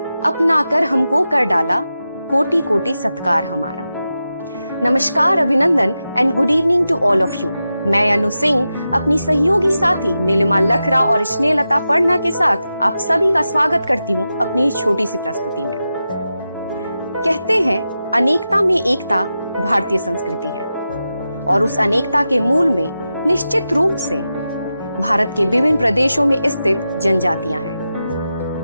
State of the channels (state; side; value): inverted; both; correlation -0.91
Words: अपना कर हमको कर डाला, कोटि कोटि सत्कार हमारा। नमस्कार, अभिनंदन and good evening to all of you. मैं अनु सिंह अपनी सहयोगी साथी नीलिमा लखरा और स्नेहलता पढ़ना के साथ आप सभी का स्वागत करती हूँ अपनी इस छोटी सी प्रस्तुति में। कहते हैं अनेकता में एकता भारतीय संस्कृति है और उस अनेकता के मूल में निश्चित रूप से भारत के विभिन्न प्रदेशों में स्थित जनजातियां